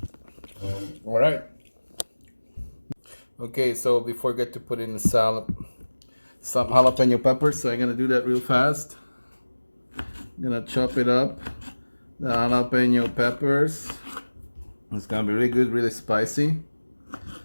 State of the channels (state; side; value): inverted; both; correlation -1.00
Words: All right. Okay, so before I get to put in the salad, some jalapeno peppers, so I'm gonna do that real fast. I'm gonna chop it up, the jalapeno peppers. It's gonna be really good, really spicy.